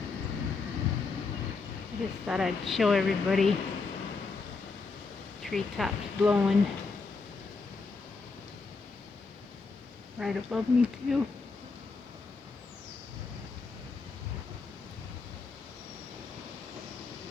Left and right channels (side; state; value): right; quieter; 4.3 dB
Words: I just thought I'd show everybody treetops blowing right above me too.